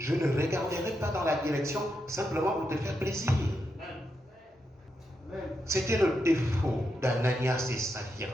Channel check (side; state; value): both; normal; correlation 0.84